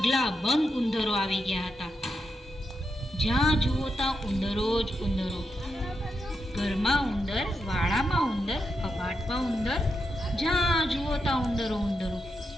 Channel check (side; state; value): both; normal; correlation 0.85